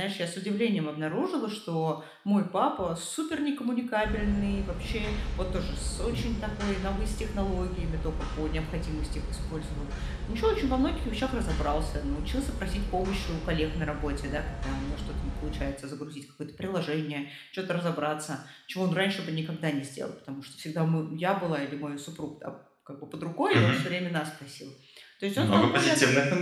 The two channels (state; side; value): identical; both; correlation 1.00